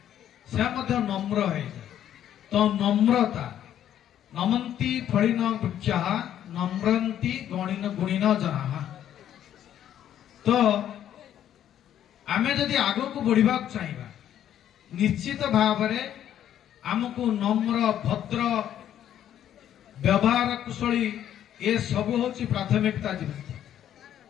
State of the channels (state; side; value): quieter; right; 10.7 dB